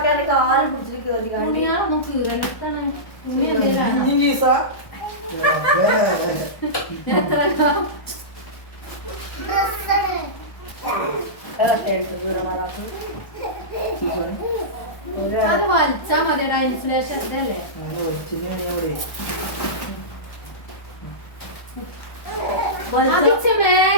കാല് പിടിച്ചിട്ട് കേറി തുണിയാളൊന്നും കീറണിട്ടാണ്. തുണി എന്തെങ്കിലും അത് വലിച്ചാ മതിയടാ. ഇൻസുലേഷൻ ഇതല്ലേ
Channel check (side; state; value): right; late; 1.2 ms